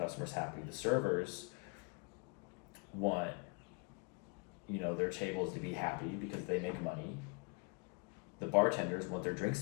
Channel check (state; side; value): quieter; right; 32.5 dB